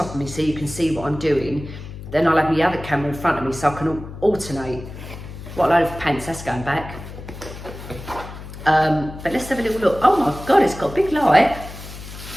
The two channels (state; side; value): noise; left; hum, 13 dB below the sound